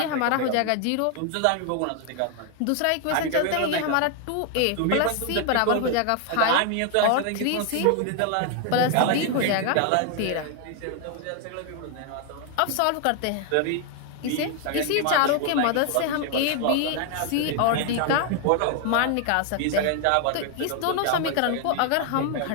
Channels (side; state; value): both; different; correlation 0.00